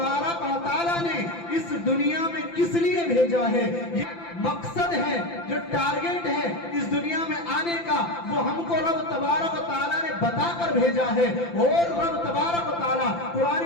و تعالیٰ نے اس دنیا میں کس لیے بھیجا ہے، یہ مقصد ہے، جو ٹارگٹ ہے اس دنیا میں آنے کا، وہ ہم کو رب تبارک و تعالیٰ نے بتا کر بھیجا ہے۔ اور رب تبارک و تعالیٰ قرآن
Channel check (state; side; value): late; right; 5.9 ms